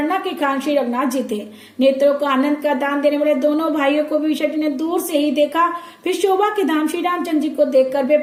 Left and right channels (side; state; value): both; identical; correlation 1.00